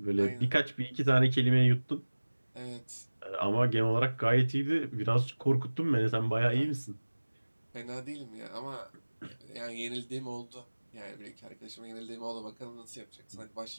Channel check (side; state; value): both; inverted; correlation -1.00